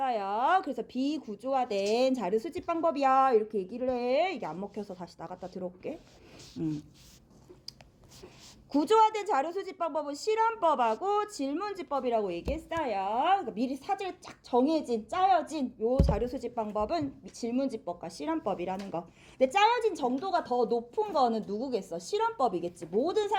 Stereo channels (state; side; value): identical; both; correlation 1.00